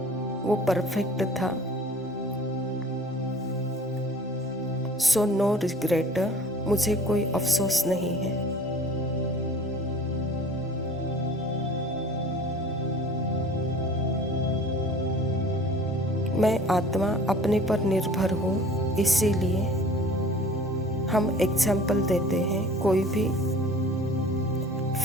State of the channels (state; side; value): normal; both; correlation 0.46